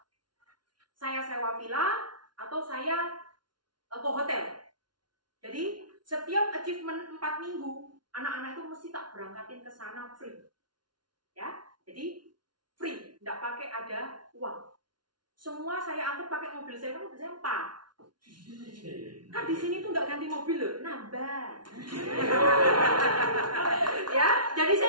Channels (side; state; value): left; late; 0.70 ms